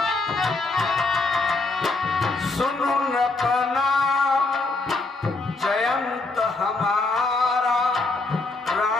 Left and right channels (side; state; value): right; quieter; 3.4 dB